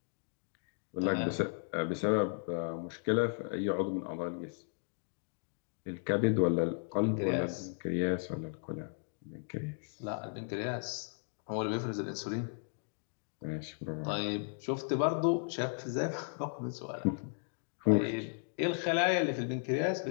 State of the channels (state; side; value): silent; right; digital silence